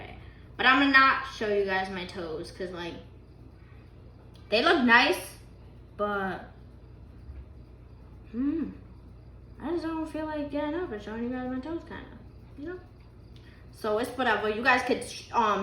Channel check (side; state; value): both; identical; correlation 1.00